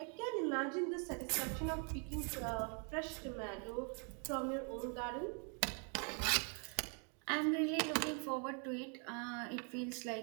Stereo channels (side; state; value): left; quieter; 39.2 dB